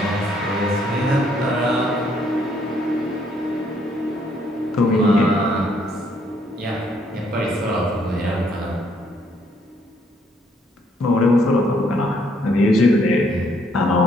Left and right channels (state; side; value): normal; both; correlation 0.69